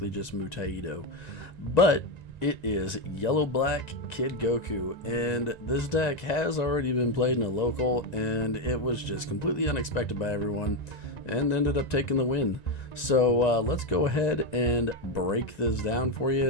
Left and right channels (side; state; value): right; late; 1.9 ms